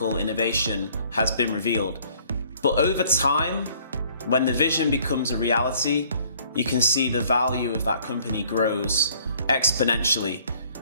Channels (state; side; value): inverted; both; correlation -0.59